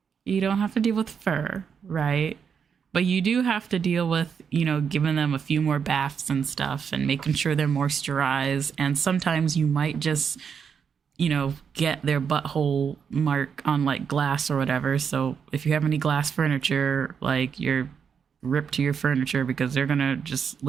You don't have to deal with fur, right? But you do have to deal with, giving them a few more baths and stuff and making sure they're moisturized. And sometimes you might just, get their butthole mark on like glass or whatever. So if you have any glass furniture, like you're ripped to your furniture because they're going to just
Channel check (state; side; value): quieter; left; 6.8 dB